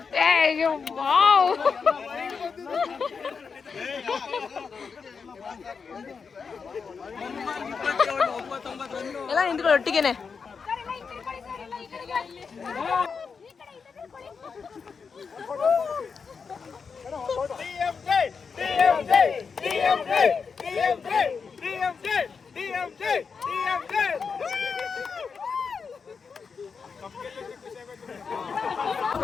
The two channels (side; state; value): right; quieter; 5.6 dB